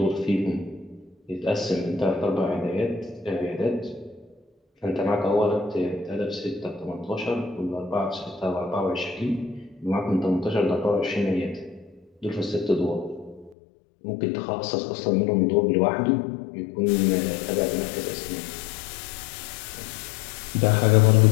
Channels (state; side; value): drops out; right; at 13.6 s